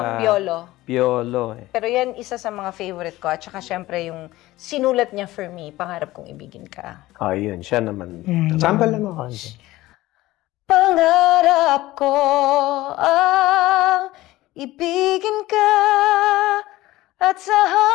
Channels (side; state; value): right; quieter; 17.4 dB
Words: Piolo. eh. Pero yan, isa sa mga favorite ko. At saka, syempre, yung sinulat niya for me, Pangarap Kong Ibigin Ka. Oh, yun. Siya naman. Sample naman ako. Pangarap ko ang ibigin ka at sa